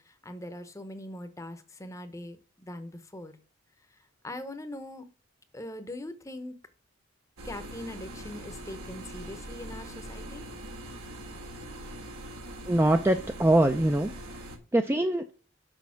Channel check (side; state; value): both; normal; correlation 0.85